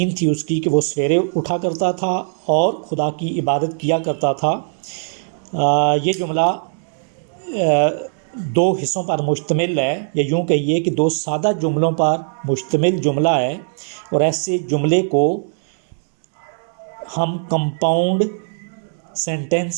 थी उसकी कि वो सवेरे उठा करता था और खुदा की इबादत किया करता था। ये जुमला दो हिस्सों पर मुश्तमिल है, या यूँ कहिए कि दो सादा जुमलों पर मुश्तमिल जुमला है। और ऐसे जुमले को हम कंपाउंड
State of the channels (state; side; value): silent; left; digital silence